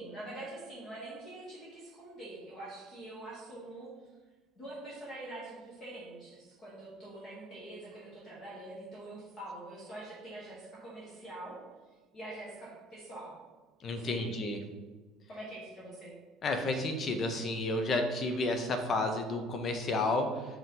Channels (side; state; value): both; normal; correlation 0.55